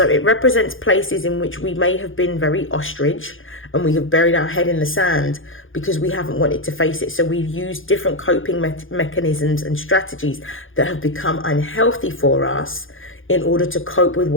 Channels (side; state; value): right; late; 0.58 ms